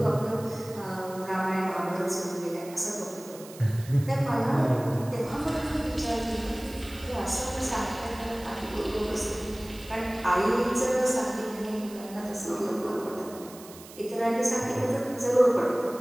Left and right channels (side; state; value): right; noise; hiss, 18 dB below the sound